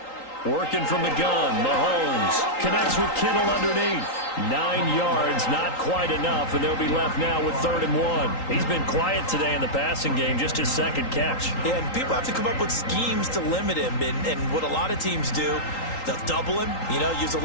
Working from the gun, Mahomes connects with Kittle underneath. 9 yards, not quite enough, and they'll be left now with 3rd and 1. He's been quiet today in the passing game, just his 2nd catch. Yeah, and people have to come up with schemes to limit him, and what a lot of teams do, they'll double him, use a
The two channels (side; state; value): right; late; 3.8 ms